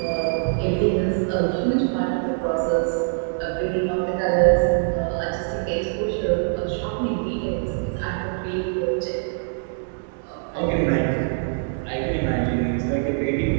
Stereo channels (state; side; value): silent; left; digital silence